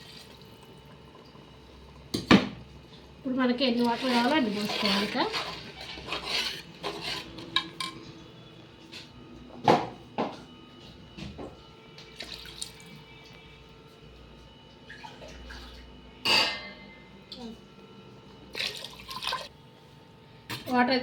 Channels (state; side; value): identical; both; correlation 1.00